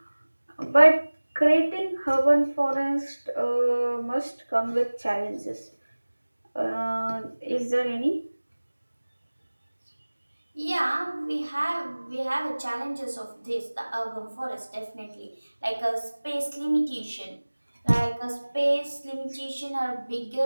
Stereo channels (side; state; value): both; inverted; correlation -1.00